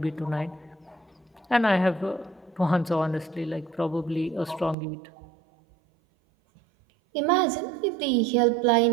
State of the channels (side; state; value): left; drops out; at 4.8 s